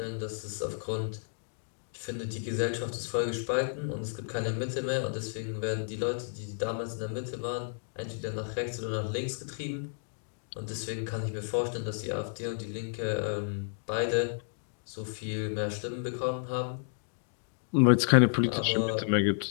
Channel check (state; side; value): silent; right; digital silence